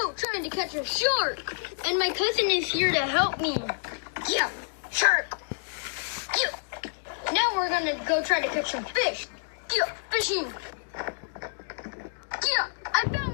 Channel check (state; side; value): silent; right; digital silence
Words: trying to catch a shark, and my cousin is here to help me. Yeah, shark. Yeah. Now we're gonna go try to catch some fish. Yeah, fishing. Yeah, I